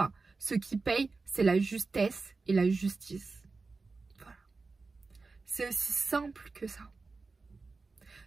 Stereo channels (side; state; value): left; quieter; 4.0 dB